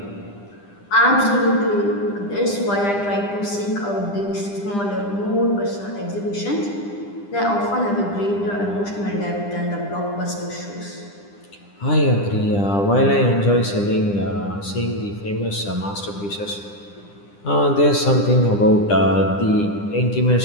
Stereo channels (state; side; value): late; right; 10 ms